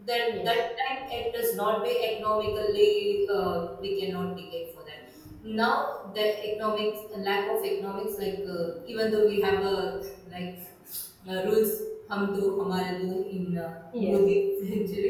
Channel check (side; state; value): both; identical; correlation 1.00